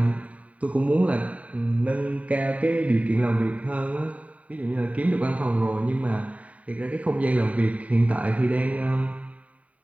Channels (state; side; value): late; left; 0.068 ms